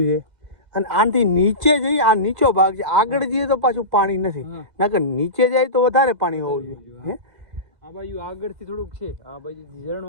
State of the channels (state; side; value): late; left; 2.0 ms